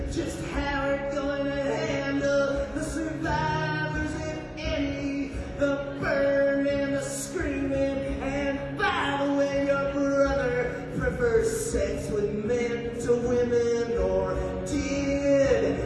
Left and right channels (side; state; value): both; identical; correlation 1.00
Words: Just how we're going to handle the survivors, if any, the burn and the screaming. And by the way, your brother prefers sex with men to women, or did